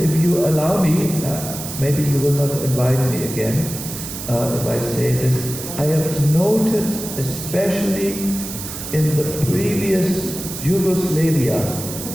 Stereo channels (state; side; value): noise; right; hiss, 9 dB below the sound